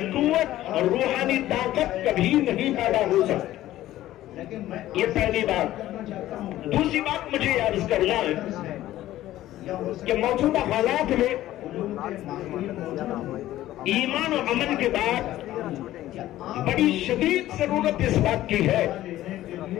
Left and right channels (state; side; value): quieter; right; 14.4 dB